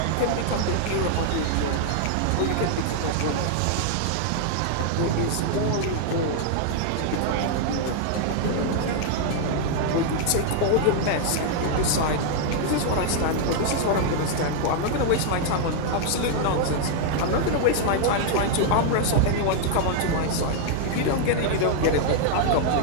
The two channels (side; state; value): both; different; correlation 0.00